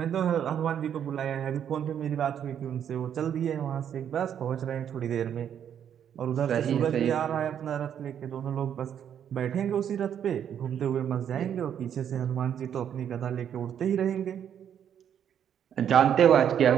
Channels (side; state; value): left; quieter; 9.1 dB